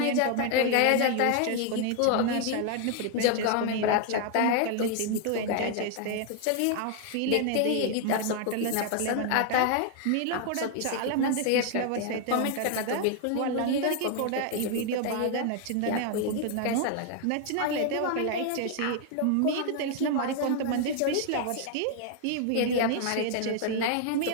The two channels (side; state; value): both; different; correlation 0.00